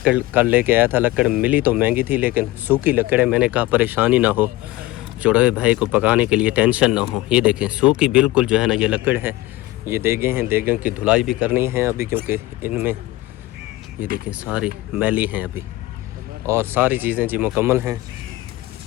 कल लेके आया था। लकड़ मिली तो महंगी थी लेकिन सूखी लकड़ है। मैंने कहा परेशानी ना हो, चढ़ोए भाई को पकाने के लिए टेंशन ना हो। ये देखें सूखी बिल्कुल जो है ना ये लकड़ है। ये देगें हैं, देगों की धुलाई भी करनी है अभी, क्योंकि इनमें ये देखें सारी मैली हैं अभी। और सारी चीज़ें जी मुकम्मल हैं।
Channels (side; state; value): right; quieter; 17.8 dB